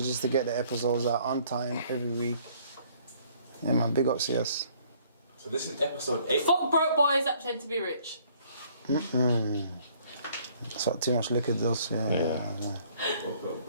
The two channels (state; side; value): inverted; both; correlation -0.61